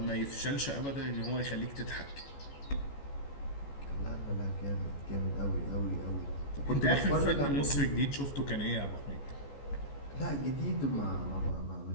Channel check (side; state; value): right; late; 14 ms